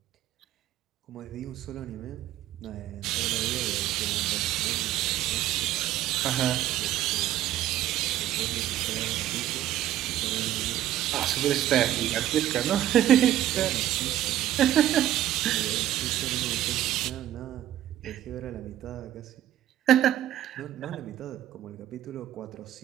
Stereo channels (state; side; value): quieter; left; 12.6 dB